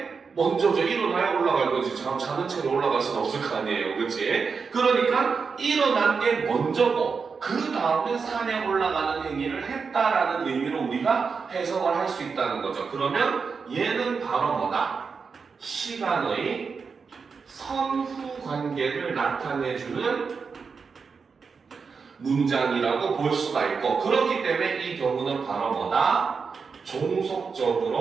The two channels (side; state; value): left; quieter; 5.3 dB